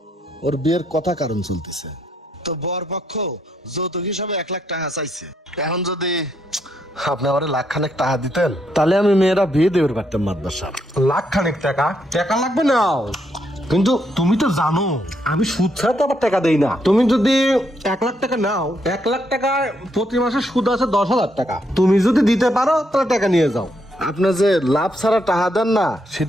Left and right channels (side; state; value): both; normal; correlation 0.76